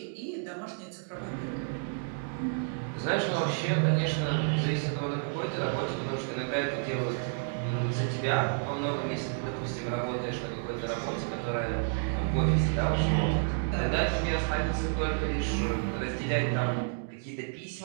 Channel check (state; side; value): silent; left; 57 dB below the other